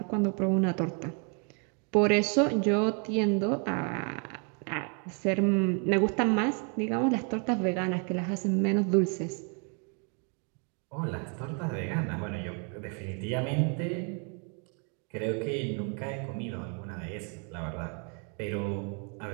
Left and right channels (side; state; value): left; quieter; 38.6 dB